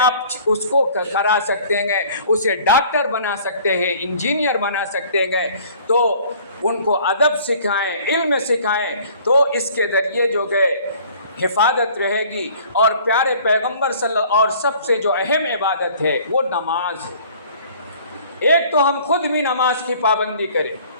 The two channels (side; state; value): both; inverted; correlation -0.52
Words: اس کو کرا سکتے ہیں، اسے ڈاکٹر بنا سکتے ہیں، انجینئر بنا سکتے ہیں، تو ان کو ادب سکھائیں، علم سکھائیں، تو اس کے ذریعے جو ہے حفاظت رہے گی۔ اور پیارے پیغمبر اور سب سے جو اہم عبادت ہے وہ نماز ہے۔ ایک تو ہم خود بھی نماز کی پابندی کریں،